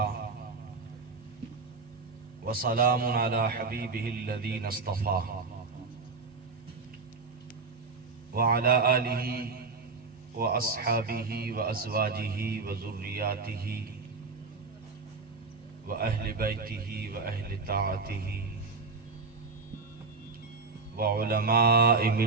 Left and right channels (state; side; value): quieter; left; 4.2 dB